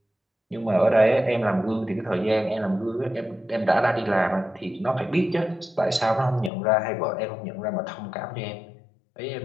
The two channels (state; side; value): drops out; right; at 6.5 s